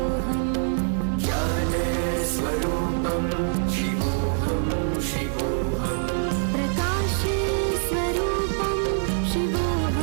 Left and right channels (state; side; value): silent; left; 62 dB below the other